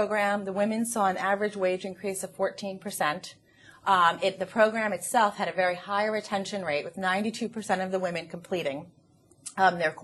the women saw an average wage increase of 14%. The program itself had a very high retention rate, with 92% of the women completing their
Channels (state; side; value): identical; both; correlation 1.00